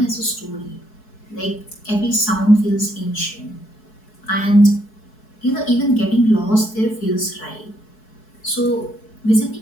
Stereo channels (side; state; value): right; late; 4.6 ms